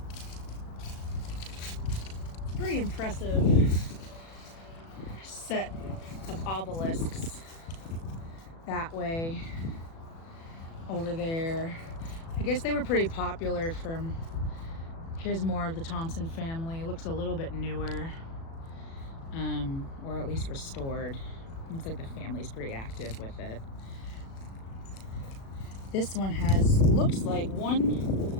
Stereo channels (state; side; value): late; right; 36 ms